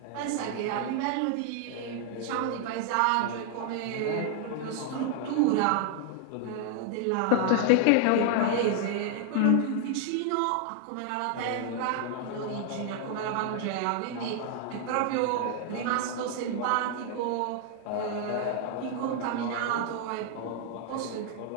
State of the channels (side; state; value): both; different; correlation 0.00